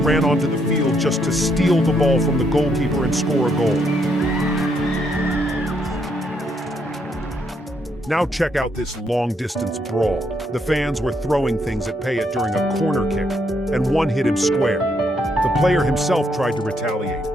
onto the field just to steal the ball from the goalkeeper and score a goal. Now check out this long-distance brawl. The fans were throwing things at Payet during a corner kick, and one hit him square. The player himself tried to retaliate,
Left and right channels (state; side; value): normal; both; correlation 0.74